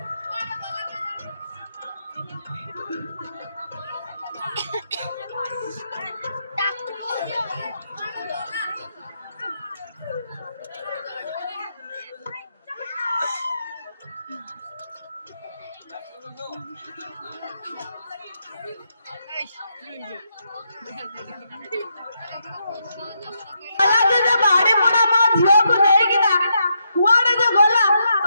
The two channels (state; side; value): inverted; both; correlation -0.80